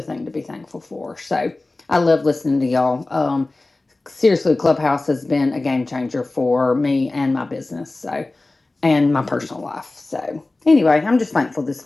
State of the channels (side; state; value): right; quieter; 3.1 dB